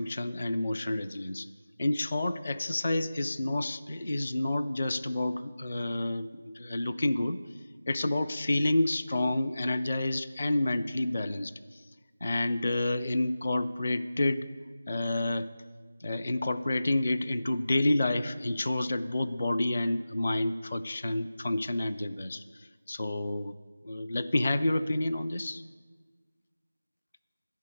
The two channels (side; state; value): both; inverted; correlation -0.95